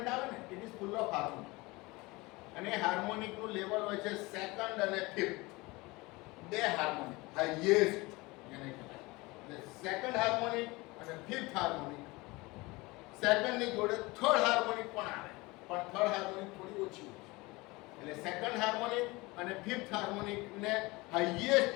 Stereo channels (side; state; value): right; quieter; 23.2 dB